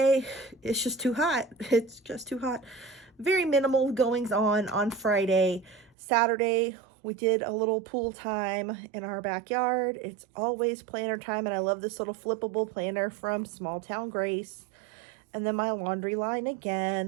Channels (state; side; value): drops out; left; at 6.0 s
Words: it's just too hot. It's just too hot. Very minimal goings on Friday. Saturday, we did a little pool time in our backyard. It's always planner time, and I love this little flippable planner from Small Town Grace. And then my laundry line